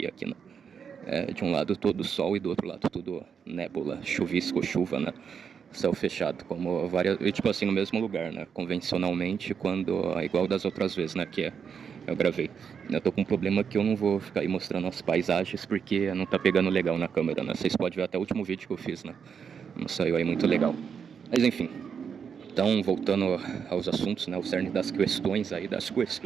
aqui, né? De um lado todo sol e do outro lado tudo nébula, chuvisco, chuva, né? Céu fechado, como várias. E tipo assim, no mesmo lugar, né? Convencionalmente, quando. Igual das outras vezes, né? Eu gravei. Eu tô com um problema que eu não vou ficar aí mostrando as paisagens porque não tá pegando legal na câmera, né? Vocês podem ver até o último vídeo que eu fiz, né? Não saiu aí muito legal. Mas enfim. Então, voltando aos assuntos, né? O cerne das questões aí,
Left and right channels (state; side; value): quieter; left; 6.9 dB